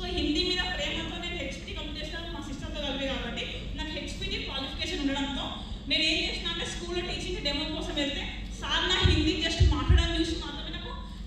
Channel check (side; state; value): both; identical; correlation 1.00